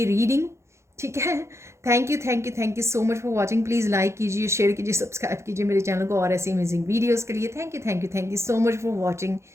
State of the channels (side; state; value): left; late; 0.13 ms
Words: रीडिंग, ठीक है। Thank you, thank you, thank you so much for watching. Please like कीजिए, शेयर कीजिए, सब्सक्राइब कीजिए मेरे चैनल को और ऐसी अमेजिंग वीडियोज़ के लिए। Thank you, thank you, thank you so much for watching,